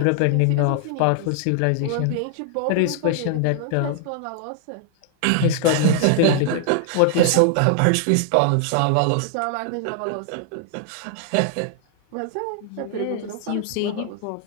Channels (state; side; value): different; both; correlation 0.00